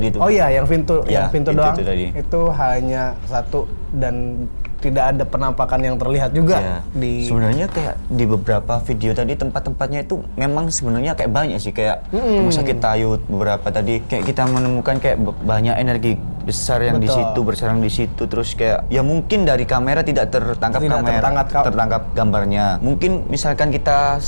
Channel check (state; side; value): inverted; both; correlation -1.00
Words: itu. Oh iya, yang pintu Ya, yang pintu pintu doang. itu tadi. Itu hanya satu dan tidak ada penampakan yang terlihat juga Ya, di sebenarnya kayak di beberapa video tadi tempat-tempatnya itu memang sebenarnya kayak banyak sih, kayak rumah sakit Tayut beberapa tadi kayak kita menemukan kayak banyak energi besar yang di Betul. situ bersarang di situ, terus kayak ya mungkin dari kamera tidak tertangkap tertangkap gambarnya. Mungkin misalkan kita